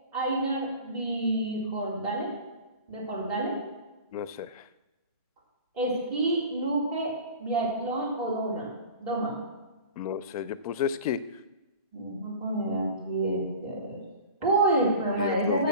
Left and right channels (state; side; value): inverted; both; correlation -0.37